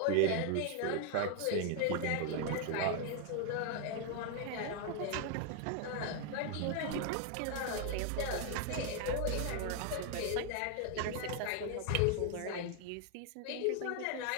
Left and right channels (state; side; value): different; both; correlation 0.00